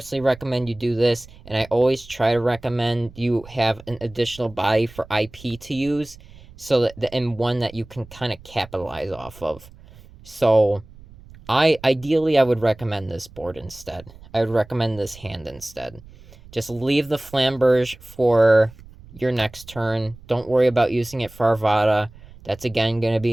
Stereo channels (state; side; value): noise; right; rumble, 21 dB below the sound